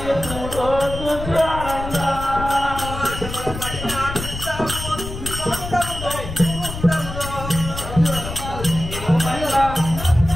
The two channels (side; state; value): left; noise; rumble, 8 dB below the sound